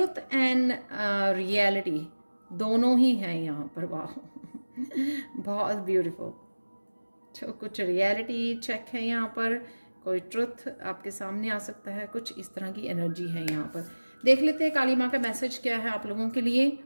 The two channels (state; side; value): inverted; both; correlation -1.00